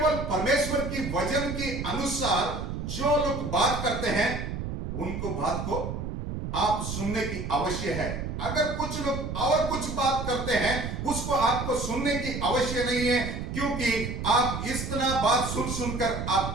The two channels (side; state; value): right; noise; rumble, 5 dB below the sound